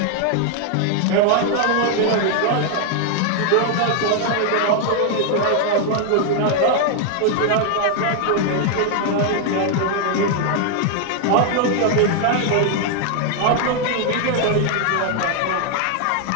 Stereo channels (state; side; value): different; both; correlation 0.00